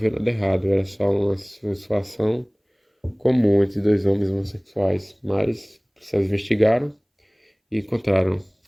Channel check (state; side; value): identical; both; correlation 1.00